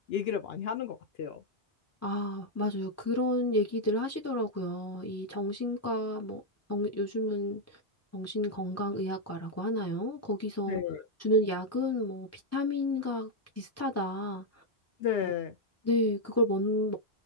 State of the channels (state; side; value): normal; both; correlation -0.03